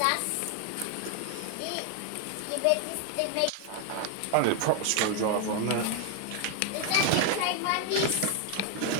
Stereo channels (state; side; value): different; both; correlation 0.00